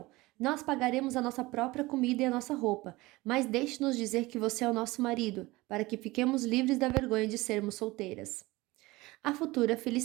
Nós pagaremos a nossa própria comida e a nossa roupa, mas deixe-nos dizer que você é o nosso marido, para que fiquemos livres da vergonha de sermos solteiras. A futura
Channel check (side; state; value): left; quieter; 20.7 dB